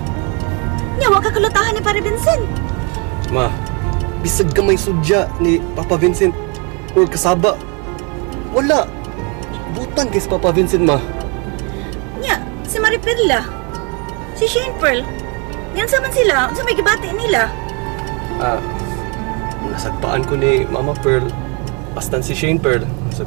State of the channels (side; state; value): left; quieter; 33.4 dB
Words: Nya, wa ka kalutahan ni Pare Vincent. Ma, bisag gamay sudya ni Papa Vincent or kasaba. Wala. Butang kay Papa Vincent, ma. Nya, si Maripirla, si Shane Pearl, yan saman sila, sa may gibati nila. Nasagpaan ko ni Mama Pearl. Bastan si Shane Pearl.